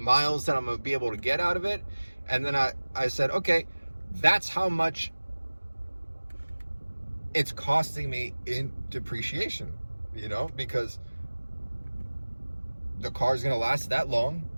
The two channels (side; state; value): both; inverted; correlation -1.00